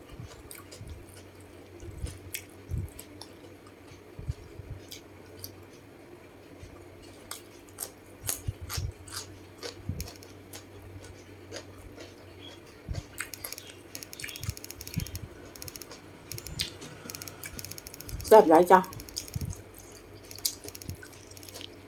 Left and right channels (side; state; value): both; identical; correlation 1.00